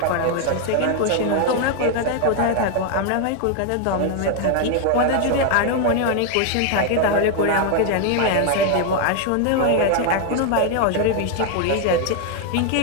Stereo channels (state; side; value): different; both; correlation 0.00